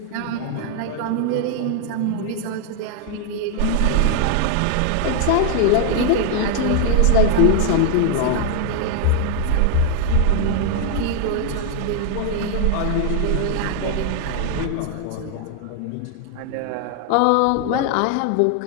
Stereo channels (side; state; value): both; different; correlation 0.00